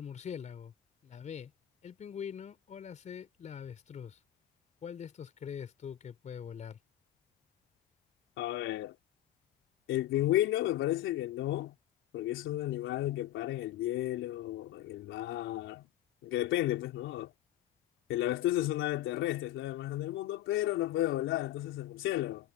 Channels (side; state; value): right; quieter; 13.7 dB